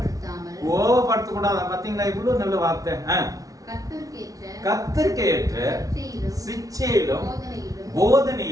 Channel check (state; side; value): late; left; 0.17 ms